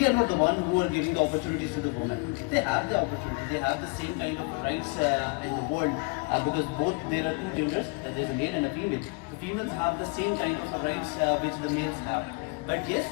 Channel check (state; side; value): quieter; right; 32.0 dB